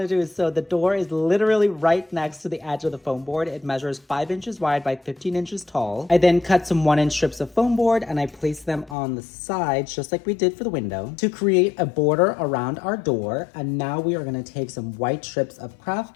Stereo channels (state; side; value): drops out; right; at 9.0 s